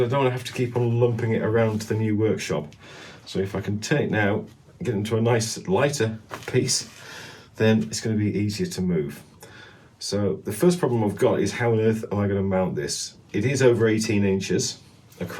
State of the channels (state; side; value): identical; both; correlation 1.00